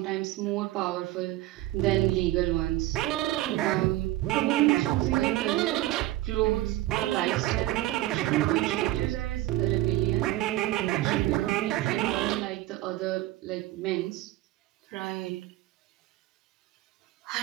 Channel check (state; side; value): quieter; left; 16.1 dB